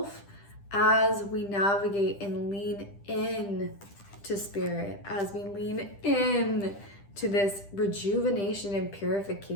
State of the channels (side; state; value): right; late; 10 ms